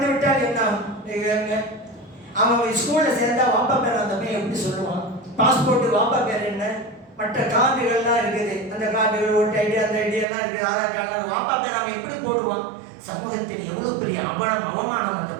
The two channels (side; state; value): left; drops out; at 10.2 s